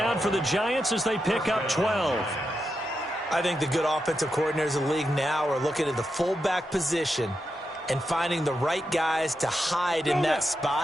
for the Giants as they pick up 12. I think the good offensive coordinators in the league now are looking at the fullback position and finding the right guys to hide in that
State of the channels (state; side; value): normal; both; correlation 0.86